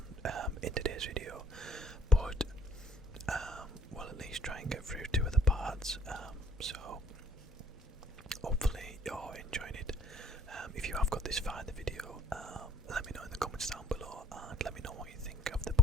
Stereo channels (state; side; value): normal; both; correlation 0.60